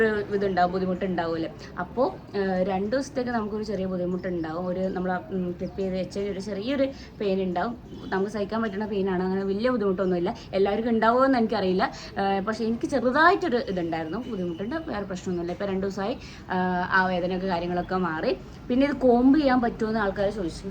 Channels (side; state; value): both; identical; correlation 1.00